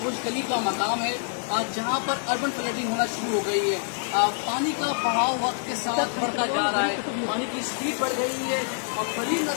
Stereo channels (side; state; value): right; silent; digital silence